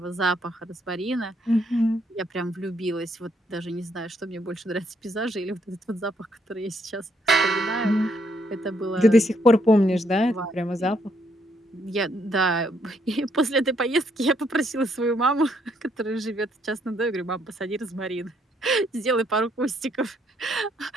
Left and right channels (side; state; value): both; normal; correlation 0.72